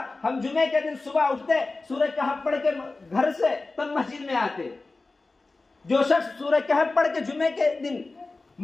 ہم جمعے کے دن صبح اٹھتے، سورہ کہف پڑھ کے گھر سے تب مسجد میں آتے. جو شخص سورہ کہف پڑھ کے جمعے کے دن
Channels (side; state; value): right; quieter; 3.5 dB